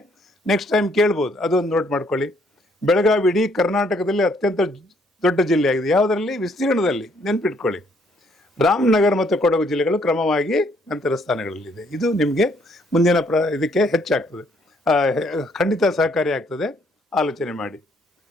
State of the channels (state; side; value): normal; both; correlation 0.67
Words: ನೆಕ್ಸ್ಟ್ ಟೈಮ್ ಕೇಳ್ಬೋದು, ಅದೊಂದು ನೋಟ್ ಮಾಡ್ಕೊಳ್ಳಿ. ಬೆಳಗಾವಿ ಇಡೀ ಕರ್ನಾಟಕದಲ್ಲಿ ಅತ್ಯಂತ ದೊಡ್ಡ ಜಿಲ್ಲೆ ಆಗಿದೆ. ಯಾವುದರಲ್ಲಿ, ವಿಸ್ತೀರ್ಣದಲ್ಲಿ, ನೆನ್ಪಿಟ್ಕೊಳ್ಳಿ. ರಾಮನಗರ ಮತ್ತು ಕೊಡಗು ಜಿಲ್ಲೆಗಳು ಕ್ರಮವಾಗಿ ನಂತರ ಸ್ಥಾನಗಳಲ್ಲಿದೆ. ಇದು ನಿಮಗೆ ಮುಂದಿನ ಇದಕ್ಕೆ ಹೆಚ್ಚಾಗ್ತದೆ, ಖಂಡಿತ ಸಹಕಾರಿ ಆಗ್ತದೆ. ಆಲೋಚನೆ ಮಾಡಿ.